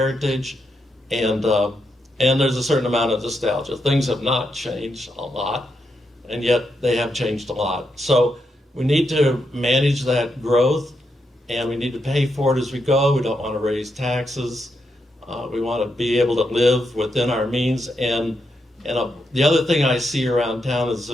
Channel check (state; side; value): normal; both; correlation 0.82